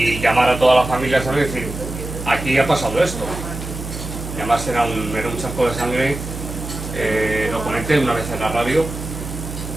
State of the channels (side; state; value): right; noise; hum, 8 dB below the sound